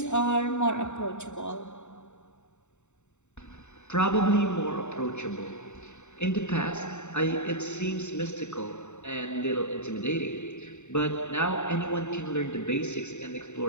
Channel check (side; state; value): right; late; 0.83 ms